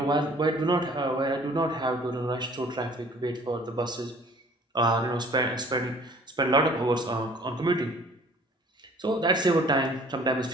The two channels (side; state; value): both; normal; correlation 0.53